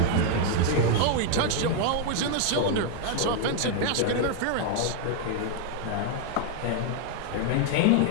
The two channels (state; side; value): different; both; correlation 0.00